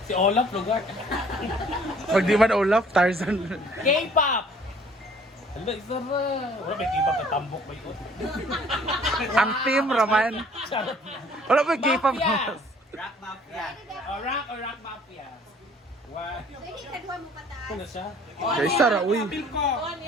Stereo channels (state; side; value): normal; both; correlation 0.56